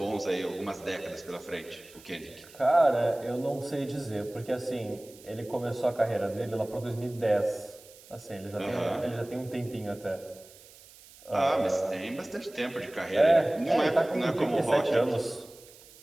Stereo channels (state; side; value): noise; right; hiss, 22 dB below the sound